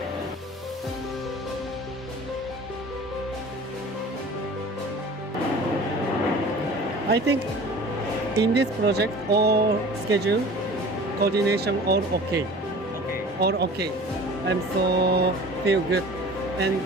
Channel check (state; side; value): normal; both; correlation 0.42